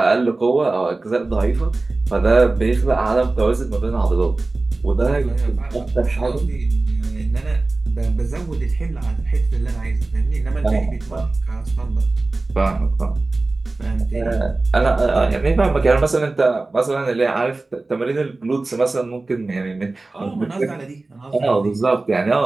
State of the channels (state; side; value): quieter; left; 3.3 dB